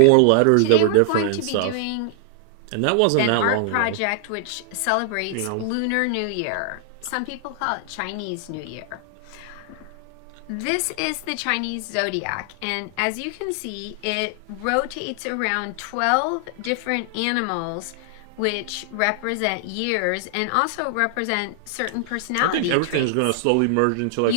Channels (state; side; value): different; both; correlation 0.00